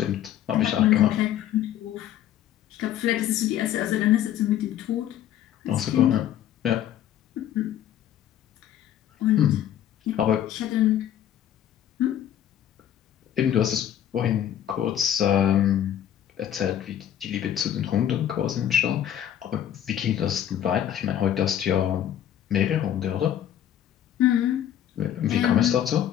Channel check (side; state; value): right; quieter; 10.8 dB